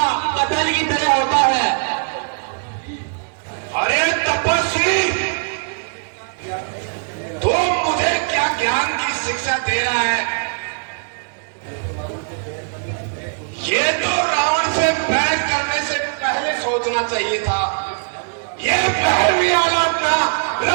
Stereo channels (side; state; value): left; silent; digital silence